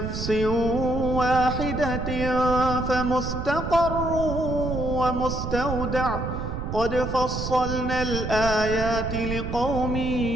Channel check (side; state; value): right; noise; rumble, 5 dB below the sound